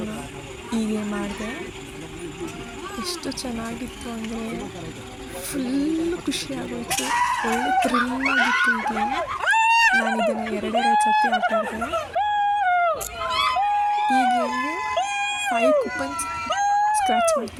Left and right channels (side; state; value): both; identical; correlation 1.00